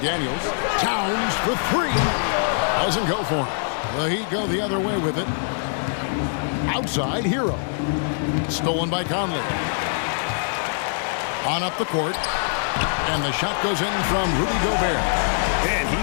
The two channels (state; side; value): silent; right; digital silence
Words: Towns for 3. Doesn't go for him. The Heat go the other way with it. Outside, Hero. Stolen by Conley. On up the court. And the shot goes in from Rudy Gobert. And